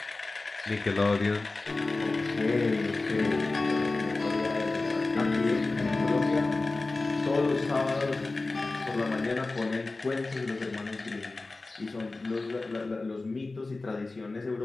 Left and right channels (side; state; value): right; quieter; 3.4 dB